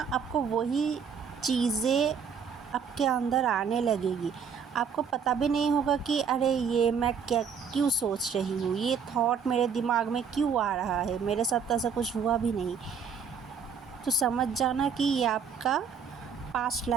आपको वही चीज़ें आपके अंदर आने लगेगी। आपको पता भी नहीं होगा कि अरे ये मैं क्यों सोच रही हूँ, ये थॉट मेरे दिमाग में क्यों आ रहा है, मेरे साथ तो ऐसा कुछ हुआ भी नहीं। तो समझ जाना कि ये आपका पास्ट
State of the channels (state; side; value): quieter; left; 6.5 dB